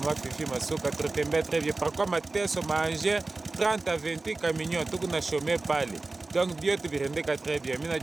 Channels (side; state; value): left; quieter; 3.4 dB